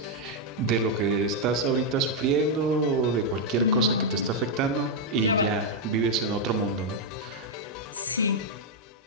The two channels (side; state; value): both; normal; correlation -0.01